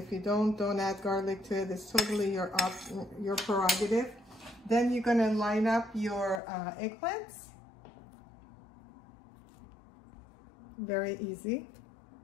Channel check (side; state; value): right; drops out; at 6.4 s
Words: you don't add garlic to it. It's totally your prerogative. Then you're gonna line up your eggplants. Very easy.